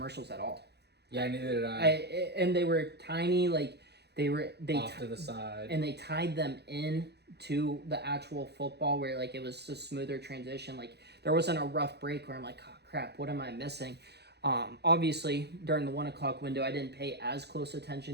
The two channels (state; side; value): late; left; 0.48 ms